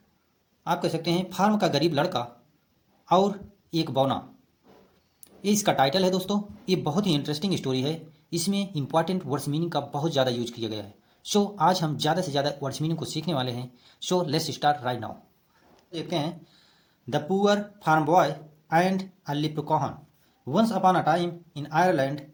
आप कह सकते हैं फार्म का गरीब लड़का और एक बौना, ये इसका टाइटल है। दोस्तों, ये बहुत ही इंटरेस्टिंग स्टोरी है। इसमें इंपॉर्टेंट वर्ड्स मीनिंग का बहुत ज़्यादा यूज किया गया है। सो आज हम ज़्यादा से ज़्यादा वर्ड्स मीनिंग को सीखने वाले हैं। So let's start right now. देखते हैं the poor farm boy and a leprechaun. Once upon a time in Ireland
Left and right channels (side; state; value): both; identical; correlation 1.00